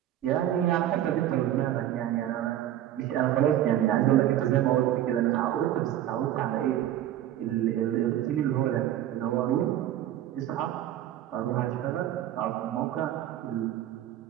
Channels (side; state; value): left; quieter; 12.2 dB